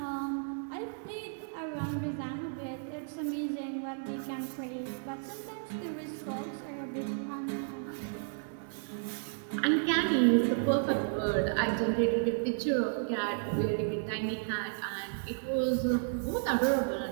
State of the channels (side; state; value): left; silent; digital silence